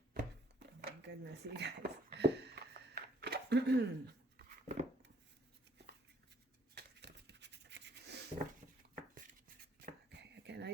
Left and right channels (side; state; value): both; normal; correlation 0.63